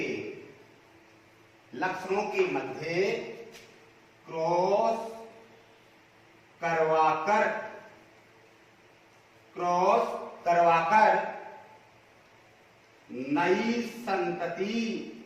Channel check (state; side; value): identical; both; correlation 1.00